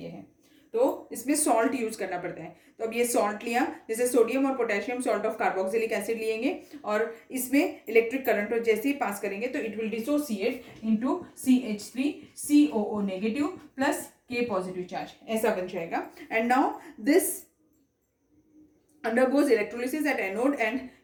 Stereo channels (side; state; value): both; identical; correlation 1.00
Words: है। तो इसमें सॉल्ट यूज करना पड़ता है। तो अब ये सॉल्ट लिया, जैसे सोडियम और पोटेशियम सॉल्ट ऑफ कार्बोक्सिलिक एसिड लिएंगे और इसमें इलेक्ट्रिक करंट जैसे ही पास करेंगे तो इट विल डिसोसिएट इनटू CH3COO नेगेटिव प्लस K पॉजिटिव चार्ज, ऐसा बन जाएगा। एंड नाउ दिस अंडरगोज इलेक्ट्रोलिसिस एट एनोड, एंड